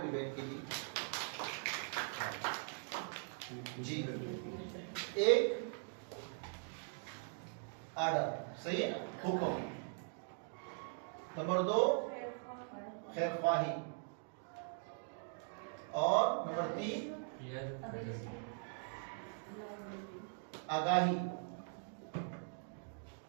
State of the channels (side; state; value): left; silent; 50 dB below the other